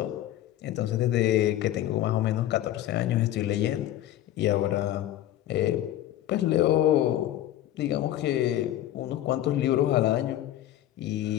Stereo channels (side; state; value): right; quieter; 13.0 dB